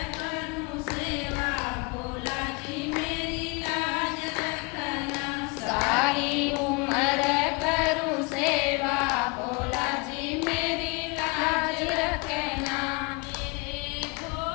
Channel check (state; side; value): quieter; right; 28.3 dB